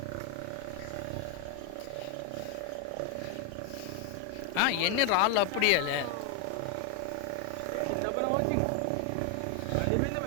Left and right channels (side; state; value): both; different; correlation 0.00